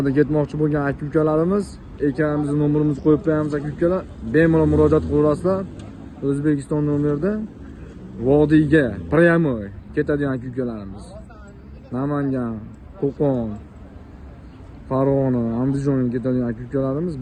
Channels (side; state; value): both; identical; correlation 1.00